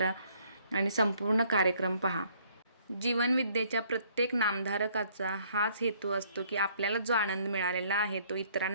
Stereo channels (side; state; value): both; inverted; correlation -0.63